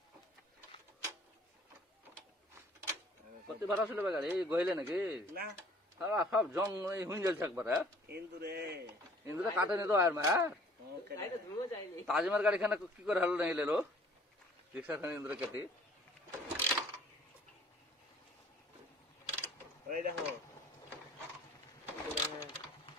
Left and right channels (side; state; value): both; normal; correlation 0.54